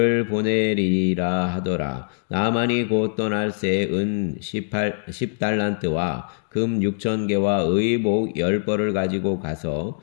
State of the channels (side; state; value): right; silent; digital silence